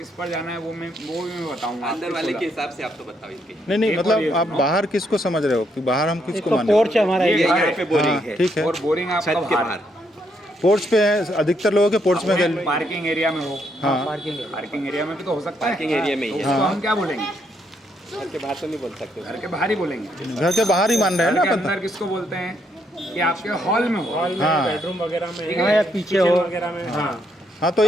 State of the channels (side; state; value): both; normal; correlation 0.75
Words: पर जाना है वो भी मैं बताऊंगा। अंदर वाले के हिसाब से आप तो बताओ इनके। नहीं मतलब आप बाहर किसको समझ रहे हो कि बाहर हम किसको तो माने? पोर्च हमारा ये ये यहाँ पे बोरिंग है, ठीक है, और बोरिंग आपका छत के बाहर। पोर्च पे है, अधिकतर लोगों के पोर्च में गैलरी। पार्किंग एरिया में हो, हाँ पार्किंग है। पार्किंग एरिया में भी तो हो सकता है। पार्किंग एरिया में ही तो है। उसको हम क्या बोलेंगे, घर के बाहर तो नहीं बोल सकते। घर के बाहर ही बोलेंगे। घर के बाहर ही मान रहे हैं घर ना के पता। अंदर किसको बोलते हैं कि आपके हॉल में हो, हाँ बेडरूम वगैरह में हाँ, या पीछे हो वगैरह में। हाँ हाँ, तो